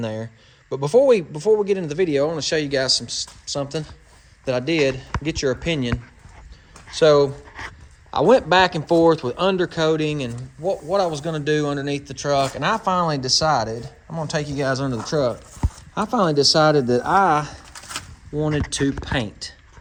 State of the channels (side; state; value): both; identical; correlation 1.00